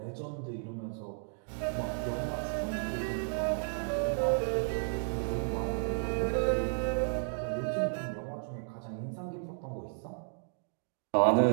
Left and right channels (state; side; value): silent; left; digital silence